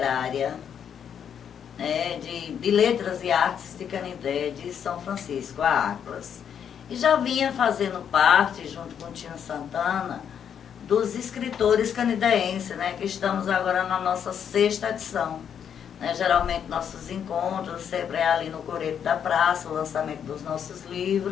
né, de Letras e Artes de Canidé de São Francisco, a ACLAS. E já vinha fazendo parte, junto com o Tinho Santana, dos escritores canideenses, né, que estamos agora na nossa 6ª edição. Né, geralmente nossos encontros sempre é ali no Coreto da Praça, o lançamento dos nossos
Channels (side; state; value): right; quieter; 8.2 dB